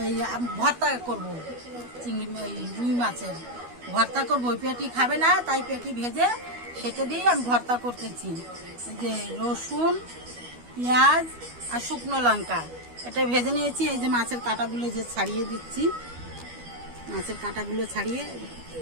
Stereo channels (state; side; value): late; left; 12 ms